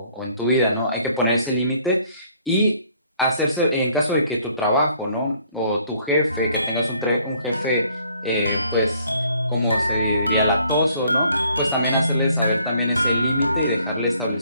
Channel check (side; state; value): both; inverted; correlation -0.62